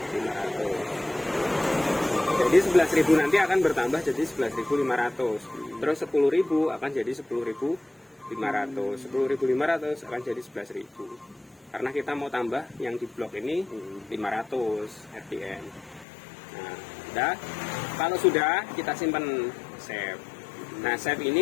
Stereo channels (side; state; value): right; drops out; at 16.1 s